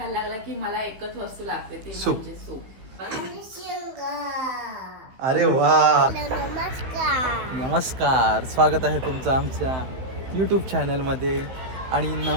लागला की मला एकच वस्तू लागते ती सूप. म्हणजे सूप. अरे वा. नमस्कार. स्वागत आहे तुमचं आमच्या यूट्यूब चॅनलमध्ये आणि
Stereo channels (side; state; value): left; late; 15 ms